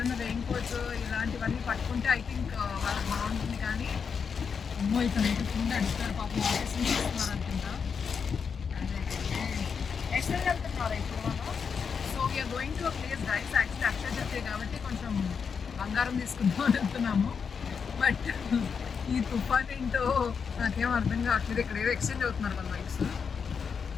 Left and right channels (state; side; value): quieter; right; 6.2 dB